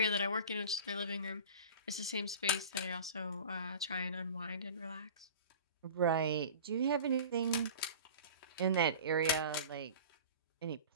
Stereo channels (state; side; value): inverted; both; correlation -0.39